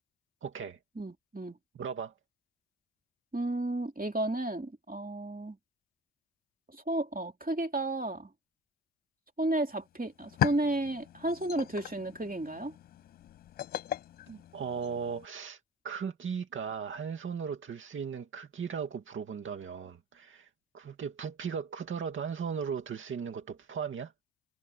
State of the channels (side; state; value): both; normal; correlation 0.39